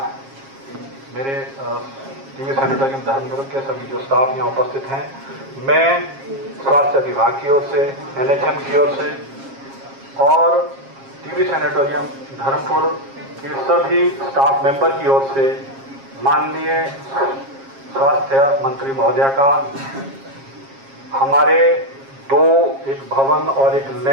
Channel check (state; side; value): late; left; 7.4 ms